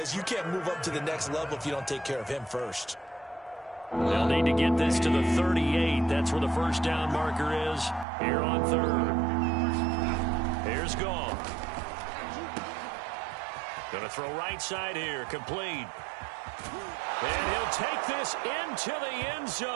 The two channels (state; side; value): drops out; left; at 8.1 s